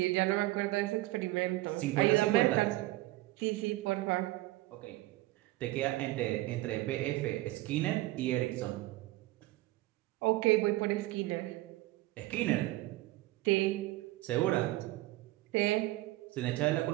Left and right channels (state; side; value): quieter; left; 18.2 dB